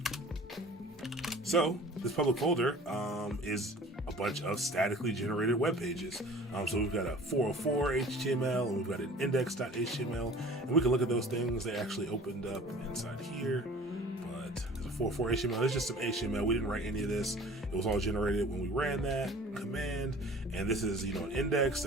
So this public folder is a bunch of statically generated web pages. So we've got a 404 HTML, and we've got an index.html, and we can look at those things. They actually opened up inside here. There's a 404 HTML. It's just some HTML. We didn't write any of this. It was all generated when we ran that command. And this is, an index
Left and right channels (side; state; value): both; normal; correlation 0.46